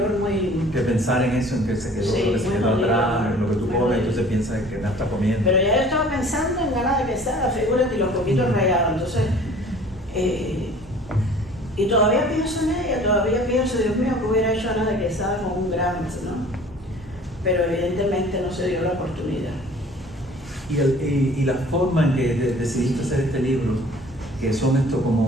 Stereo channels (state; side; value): normal; both; correlation 0.49